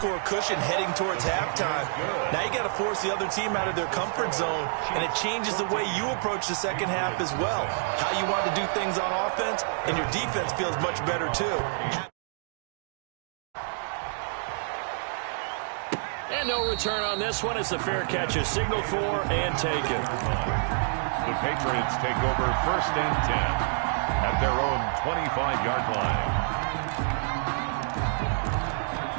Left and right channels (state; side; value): silent; left; digital silence